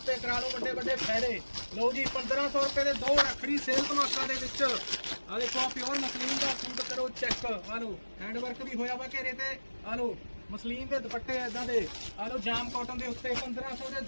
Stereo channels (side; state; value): both; inverted; correlation -1.00